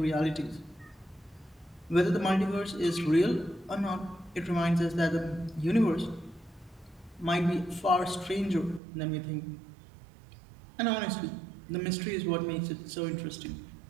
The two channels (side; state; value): left; drops out; at 8.8 s